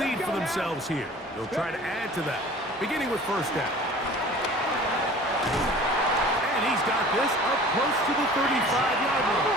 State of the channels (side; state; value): both; normal; correlation 0.45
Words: lead for themselves here. They'll try to add to that, beginning with 1st down. And he's got this up close to the 35-yard line.